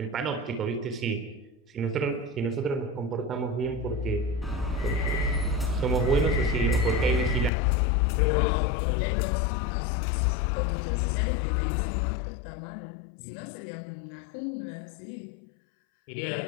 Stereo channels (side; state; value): right; drops out; at 7.5 s